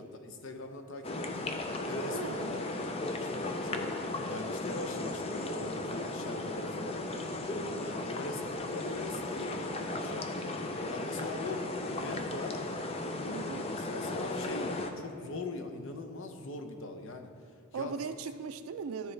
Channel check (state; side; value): normal; both; correlation 0.22